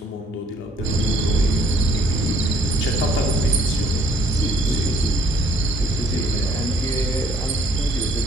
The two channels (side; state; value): both; normal; correlation 0.64